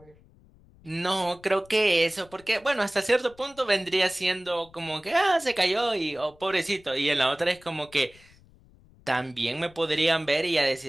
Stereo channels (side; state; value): left; noise; rumble, 27 dB below the sound